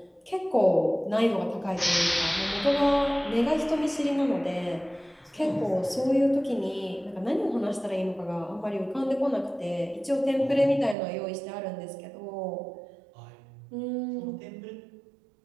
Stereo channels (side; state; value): left; drops out; at 11.0 s